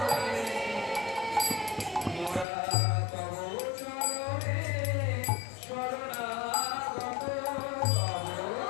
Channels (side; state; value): right; drops out; at 2.5 s